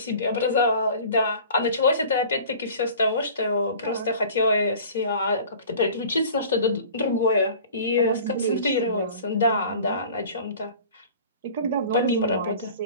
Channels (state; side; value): inverted; both; correlation -0.44